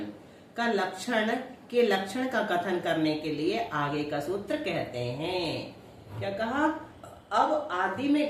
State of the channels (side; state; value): both; identical; correlation 1.00